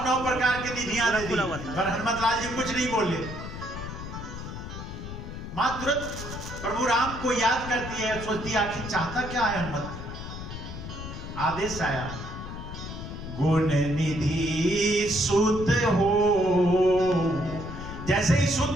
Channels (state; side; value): noise; left; rumble, 9 dB below the sound